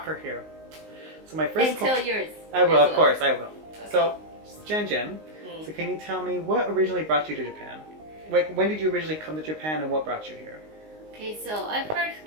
her here. So my first And tell yours. I will, as of well. course, I will. Okay. So, Jen Jen, Mm. so can you tell me what originally brought you to Japan? Like, when did you originally come to Japan and what brought you here? Okay, so I first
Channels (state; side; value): late; left; 19 ms